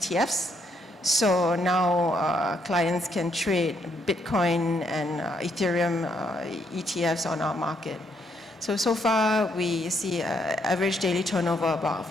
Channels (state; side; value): normal; both; correlation 0.73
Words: So now clients can trade Bitcoin and Ethereum ETFs on our market. So far, we see average daily turnover about